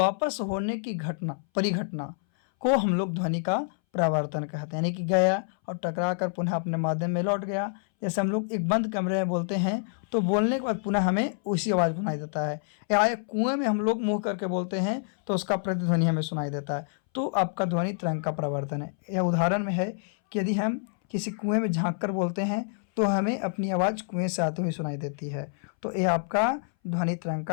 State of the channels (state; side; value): silent; right; 60 dB below the other